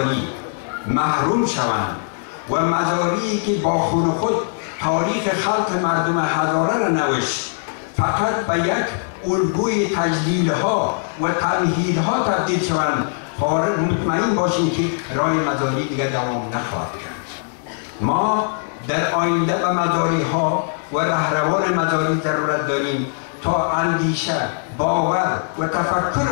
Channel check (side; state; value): right; silent; digital silence